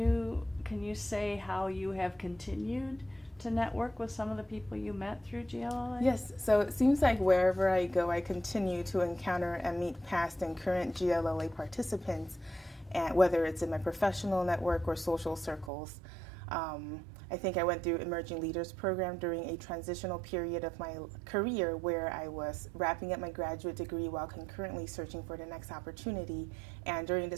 say how you have continued to network with some of the people you met through GLLA? Yes, so it seems like wherever I go, I continue to encounter and meet past and current GLLA participants, and whether it's in my professional network or social circles. I think I went through Emerging Leaders Program during a transitional period of my career where I was wrapping up my graduate degree while concurrently searching for the next opportunity. And during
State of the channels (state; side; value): drops out; left; at 15.7 s